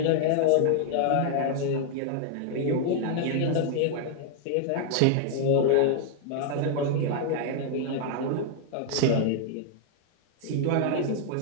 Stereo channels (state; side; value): different; both; correlation 0.00